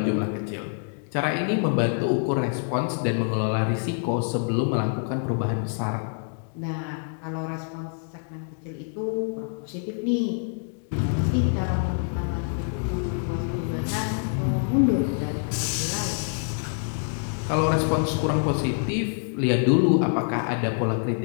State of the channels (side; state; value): right; silent; 56 dB below the other